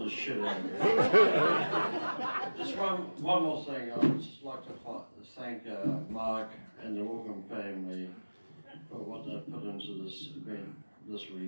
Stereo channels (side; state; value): both; inverted; correlation -1.00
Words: this shit on you. Just one more thing. I would just like to thank Mark and the Wilkham family for what they've put into this event this